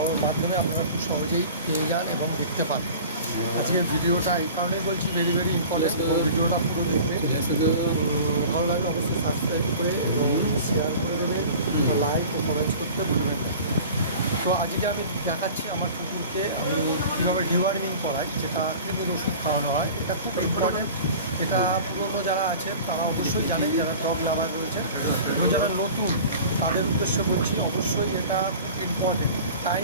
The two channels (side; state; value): both; inverted; correlation -0.40